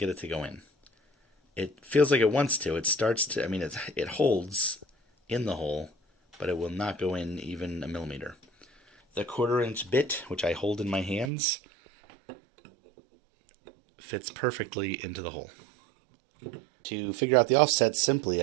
it to go in. It feels like it wants to. It starts to, it holds in the hole, but it will not go in even a millimeter. The 1/4 inch bit, which I hold in my hands, fits perfectly into the hole. To figure out the offset simply,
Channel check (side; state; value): left; drops out; at 11.3 s